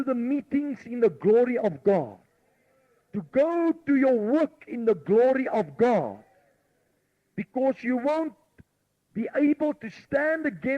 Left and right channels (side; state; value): both; identical; correlation 1.00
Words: the meetings in the glory of God. To go to your work in the glory of God. Because you won't be able to stand